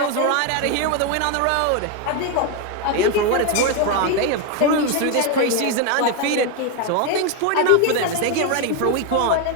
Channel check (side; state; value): both; different; correlation 0.02